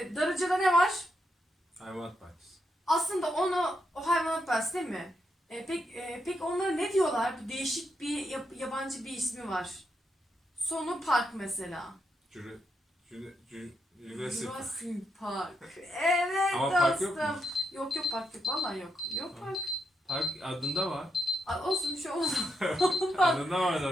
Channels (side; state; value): both; normal; correlation 0.81